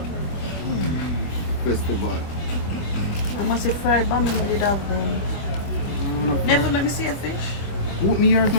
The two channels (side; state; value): right; late; 24 ms